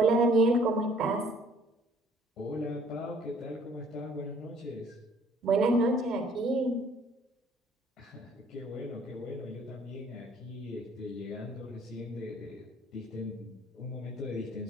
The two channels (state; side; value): normal; both; correlation 0.58